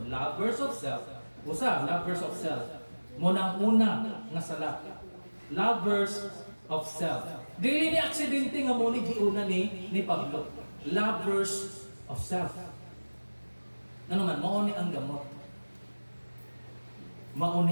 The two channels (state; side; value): inverted; both; correlation -1.00